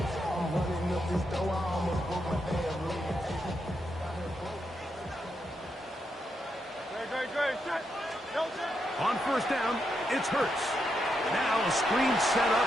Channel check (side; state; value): both; normal; correlation 0.82